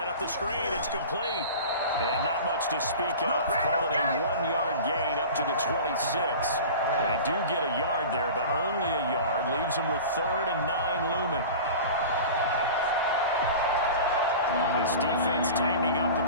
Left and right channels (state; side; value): inverted; both; correlation -0.36